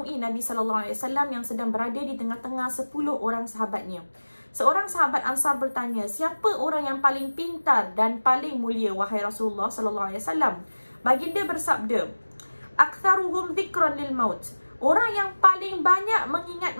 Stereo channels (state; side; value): inverted; both; correlation -1.00